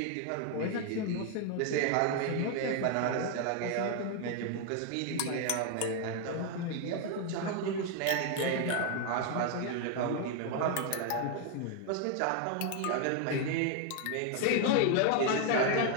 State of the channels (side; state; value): both; different; correlation 0.01